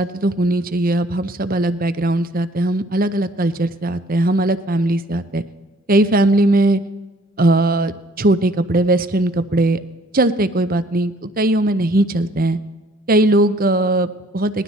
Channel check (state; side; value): normal; both; correlation 0.59